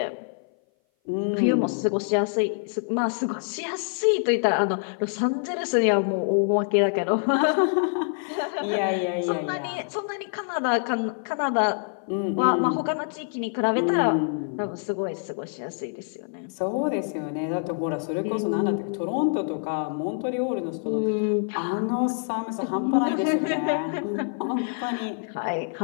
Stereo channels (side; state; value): right; silent; 57 dB below the other